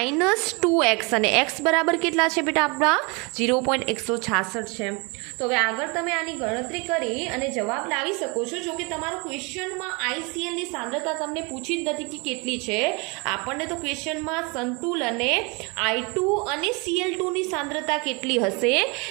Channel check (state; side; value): quieter; left; 29.6 dB